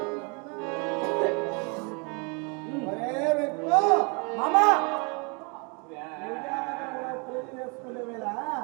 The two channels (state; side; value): quieter; left; 33.3 dB